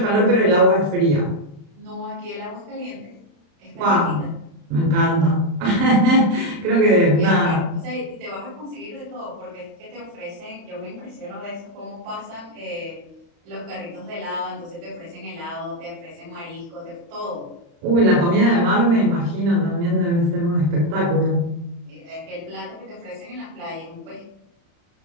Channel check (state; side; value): late; left; 35 ms